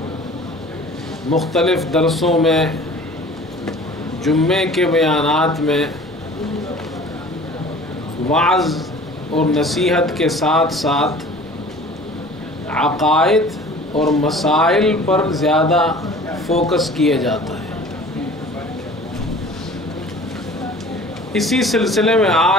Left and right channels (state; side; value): normal; both; correlation 0.45